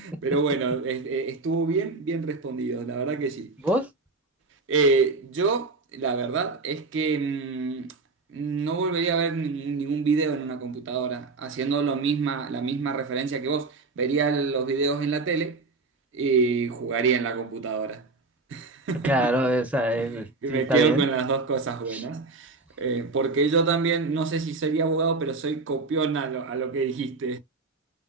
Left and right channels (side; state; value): left; quieter; 3.7 dB